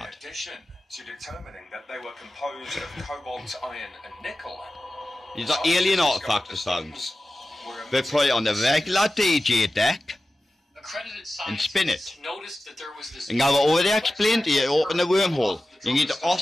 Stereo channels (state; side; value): normal; both; correlation 0.94